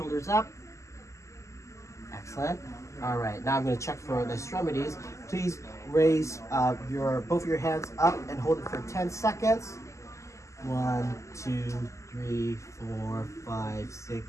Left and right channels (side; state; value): right; late; 0.14 ms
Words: up. Excellent. All right. Now I'm going to check for the extremities. Please raise both your hands up and hold it for 10 seconds. 1, 2, 3, 4, 5, 6,